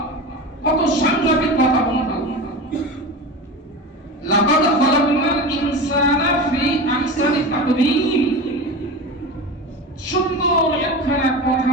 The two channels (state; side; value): normal; both; correlation 0.28